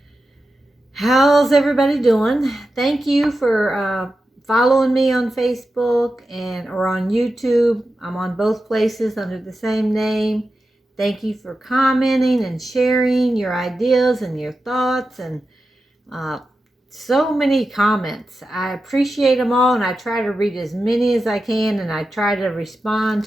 How's everybody doing? Thank you for following me on Facebook or on YouTube. I'm on both places under the same name. Thank you for commenting and sharing your ideas and your thoughts and so many comments. I appreciate them all, and I try to read as many as I can, and I try to respond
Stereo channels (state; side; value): normal; both; correlation 0.91